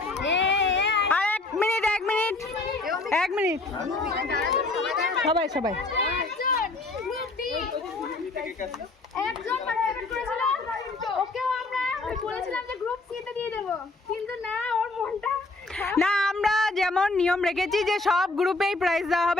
আর 1 মিনিট 1 মিনিট 1 মিনিট, সবাই সবাই। একজন পার্টিসিপেট করেছিল, ওকেও আমরা বলেছিলাম যে গ্রুপ সি তে দিয়ে দেব, কিন্তু না, ওর মনটা না, আমরা যেমন নিয়ম রেখেছি যে সব গ্রুপেই প্রাইজ দেওয়া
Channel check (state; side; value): quieter; right; 3.2 dB